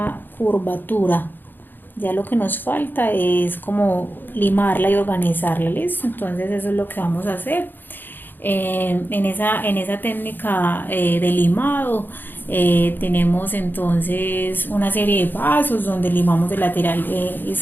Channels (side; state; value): right; late; 0.093 ms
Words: curvatura. Ya lo que nos falta es como limarla y organizarla, ¿listo? Entonces eso es lo que vamos a hacer. En esa técnica de limado tenemos entonces una serie de pasos donde limamos el lateral